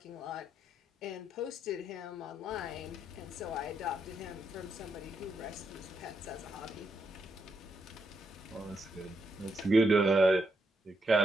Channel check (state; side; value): normal; both; correlation 0.80